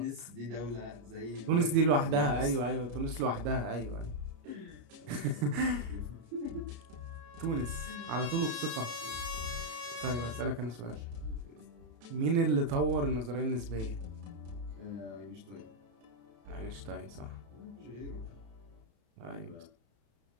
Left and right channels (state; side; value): late; left; 33 ms